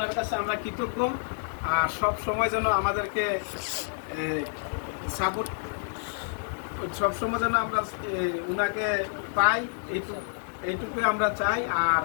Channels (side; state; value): right; silent; digital silence